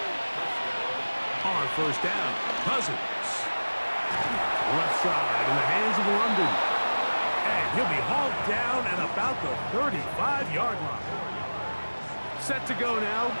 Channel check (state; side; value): inverted; both; correlation -1.00